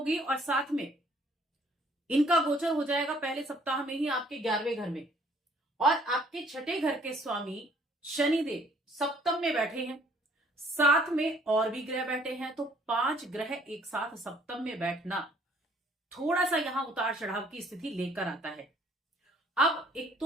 और साथ में इनका गोचर हो जाएगा पहले सप्ताह में ही आपके 11वें घर में। और आपके छठे घर के स्वामी शनिदेव सप्तम में बैठे हैं, साथ में और भी ग्रह बैठे हैं। तो 5 ग्रह एक साथ सप्तम में बैठना थोड़ा सा यहां उतार चढ़ाव की स्थिति लेकर आता है। अब एक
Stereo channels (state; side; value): normal; both; correlation 0.60